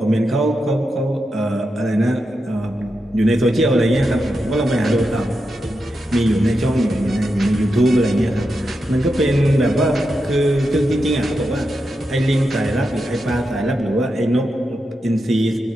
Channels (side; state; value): both; normal; correlation 0.87